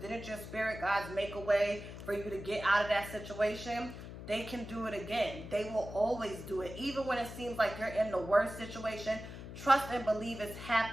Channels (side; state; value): left; noise; hum, 11 dB below the sound